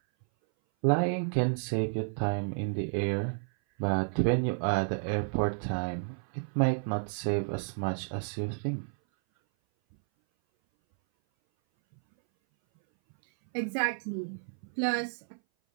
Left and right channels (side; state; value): left; silent; 57 dB below the other